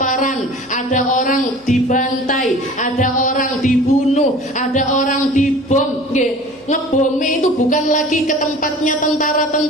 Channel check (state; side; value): noise; left; hum, 29 dB below the sound